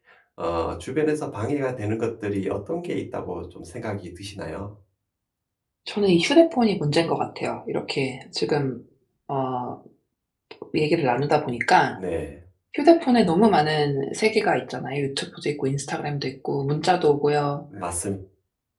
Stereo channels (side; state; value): both; identical; correlation 1.00